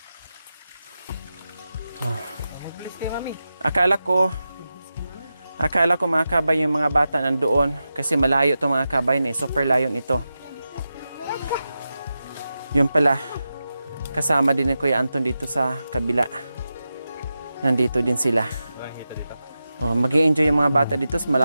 Oh. Akala ko mga kabay yung mga bata nandoon kasi malayo itong mga kabay na super layo nito. Yun pala, kasama din ni Kuya Anton dito sa kabila. Nandito din sila. Oh, mag-i-enjoy yung mga bata dito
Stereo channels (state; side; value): inverted; both; correlation -0.92